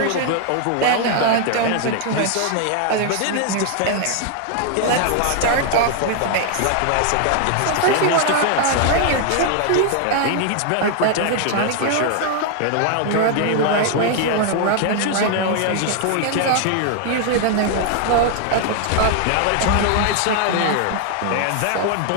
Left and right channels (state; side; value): different; both; correlation 0.00